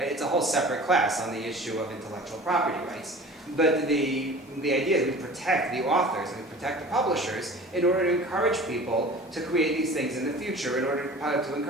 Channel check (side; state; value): both; normal; correlation 0.41